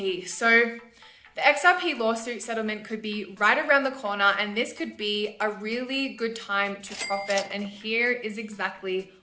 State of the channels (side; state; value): both; identical; correlation 1.00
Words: So the XRP lawsuit settlement could be right around the corner, and this could be a really good time to profit, and here is exactly